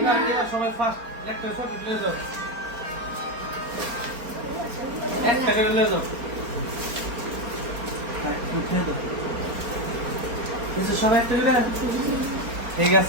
না। এবার সবাই ফার্স্ট একটা ছোট প্লে দাও, একটা করে নিয়ে যাও, উঠে দাও। বুঝছো সবাই একটা করে? ঠিক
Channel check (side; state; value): left; late; 4.3 ms